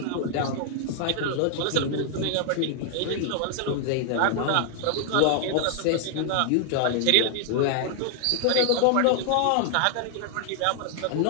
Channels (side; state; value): both; different; correlation 0.00